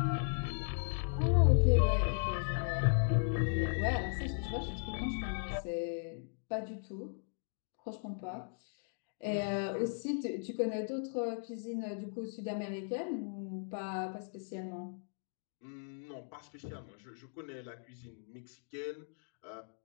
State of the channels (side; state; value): right; silent; digital silence